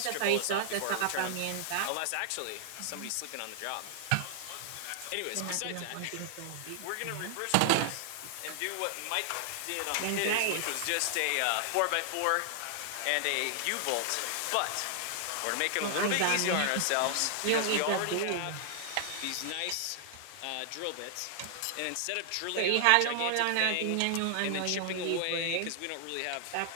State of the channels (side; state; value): both; different; correlation 0.00